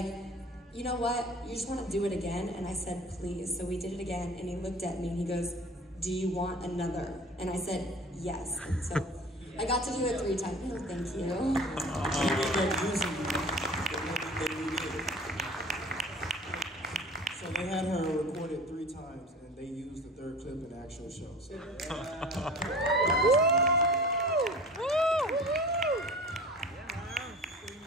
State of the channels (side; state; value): both; normal; correlation 0.41